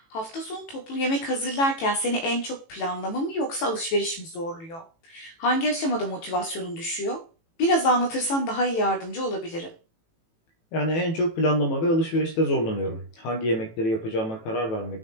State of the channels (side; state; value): right; late; 18 ms